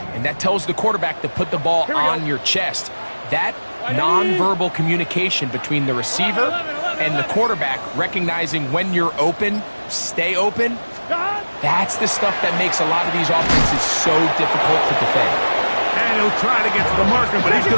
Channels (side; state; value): both; inverted; correlation -1.00